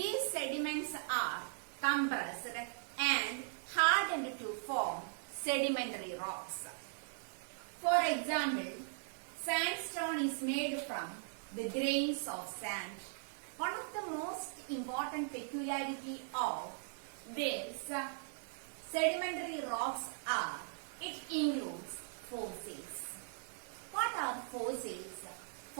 sediments are compressed and hardened to form sedimentary rocks. For example, sandstone is made from the grains of sand. One of the most important peculiarity of these sedimentary rocks are it includes fossils. What are fossils?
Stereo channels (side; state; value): left; silent; digital silence